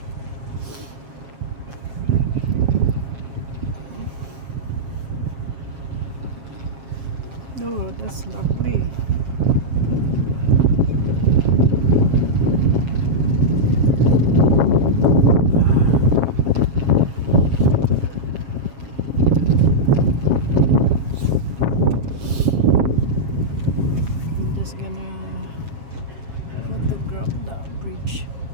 Oh, that's lovely. I'm just gonna photograph that bridge.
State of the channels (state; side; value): late; left; 7.4 ms